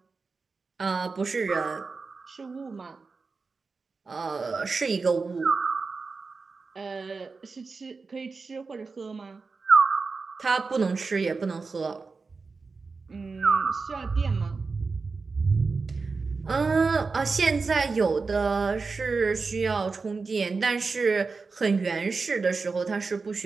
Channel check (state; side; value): quieter; left; 4.4 dB